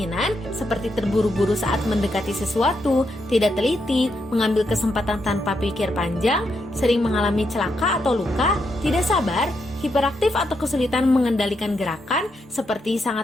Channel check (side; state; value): both; normal; correlation 0.81